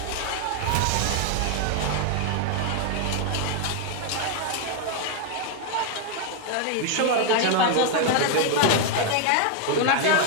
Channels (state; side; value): different; both; correlation 0.00